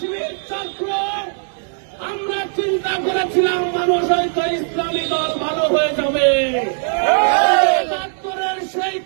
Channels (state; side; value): silent; left; 64 dB below the other